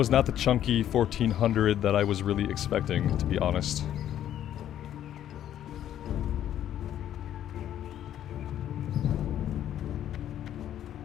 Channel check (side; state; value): right; quieter; 11.1 dB